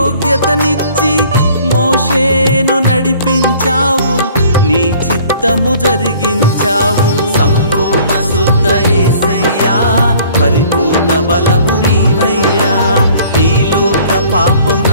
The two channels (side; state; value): both; inverted; correlation -0.53